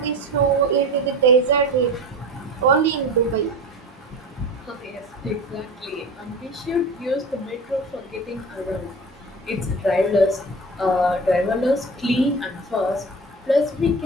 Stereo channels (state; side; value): normal; both; correlation 0.33